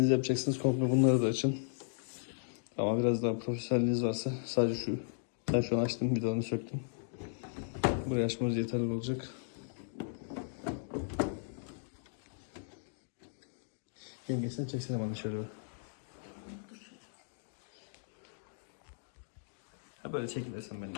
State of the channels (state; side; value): silent; right; digital silence